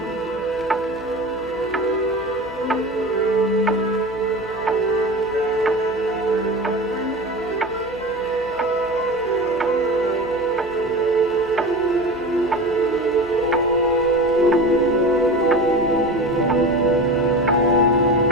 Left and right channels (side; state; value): right; noise; hum, 23 dB below the sound